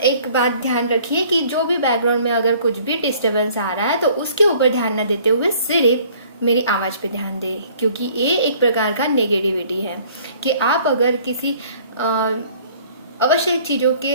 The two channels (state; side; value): inverted; both; correlation -0.55